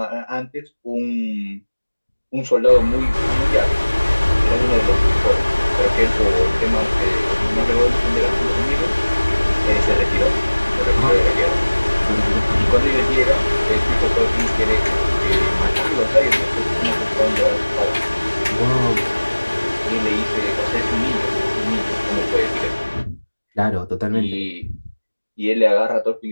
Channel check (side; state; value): both; inverted; correlation -1.00